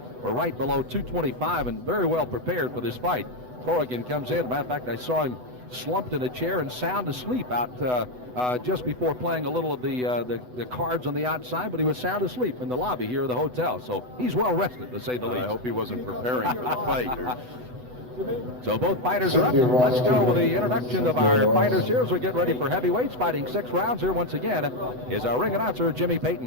were right below 225 and very well prepared for this fight. Corrigan comes in. Matter of fact, I saw him slumped in a chair and sound asleep out just before playing a little of the cards on the outside, but he was sound asleep in the lobby here of the hotel. So he's well rested, to say the least. I hope he wasn't preparing for the fight. So both fighters are up. Let's go with the introduction of our fighters here as we get ready for heavyweights. Fighting 6 rounds here once again is our ring announcer, Jimmy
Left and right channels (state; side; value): late; left; 8.0 ms